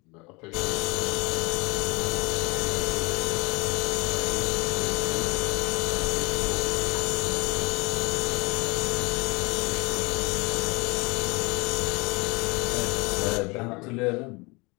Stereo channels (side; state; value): right; quieter; 26.8 dB